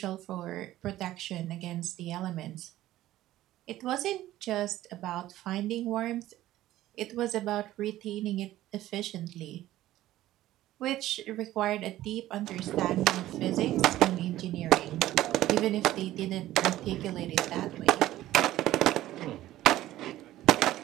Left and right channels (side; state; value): left; quieter; 14.7 dB